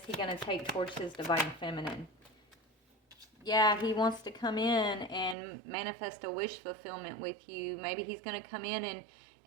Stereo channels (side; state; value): left; drops out; at 5.4 s